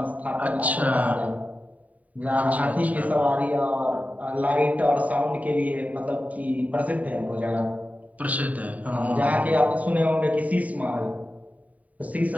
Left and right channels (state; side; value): late; left; 0.071 ms